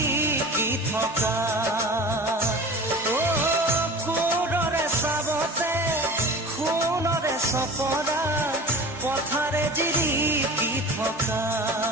থকা, সুৰৰে চাবতে সোণৰে চপৰা পথাৰে জিৰিকি থকা।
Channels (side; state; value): both; normal; correlation 0.37